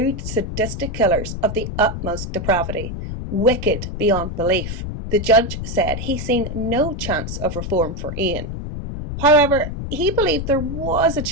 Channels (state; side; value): noise; left; rumble, 6 dB below the sound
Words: sadistic killers of the utmost depravity, wicked beyond belief. The judge said he seen no chance of reform for Ian. However, he believed there was a